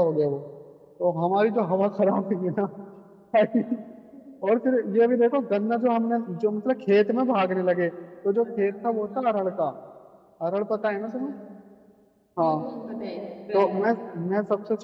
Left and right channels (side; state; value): both; identical; correlation 1.00